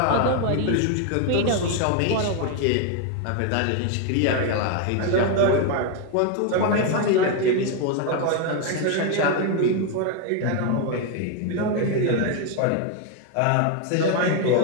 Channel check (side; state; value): both; different; correlation 0.01